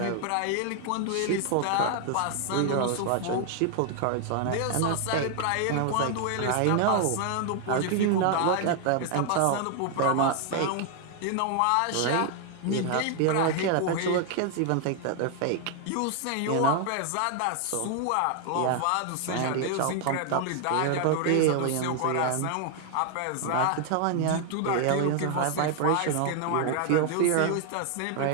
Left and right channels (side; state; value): both; different; correlation 0.00